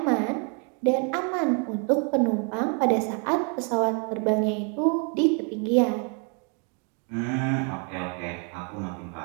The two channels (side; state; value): left; quieter; 37.9 dB